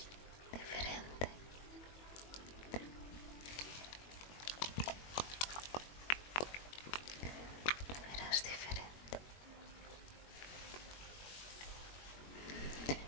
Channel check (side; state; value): right; late; 21 ms